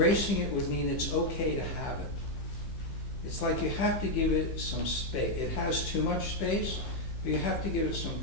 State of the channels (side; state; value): right; late; 15 ms